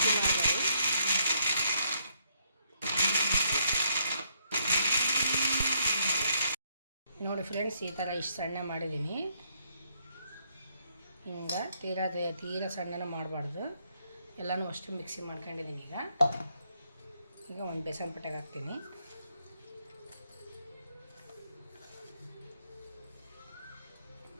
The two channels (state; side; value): inverted; both; correlation -0.72